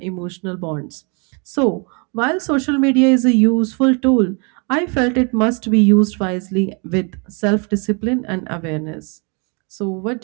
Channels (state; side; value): quieter; left; 34.2 dB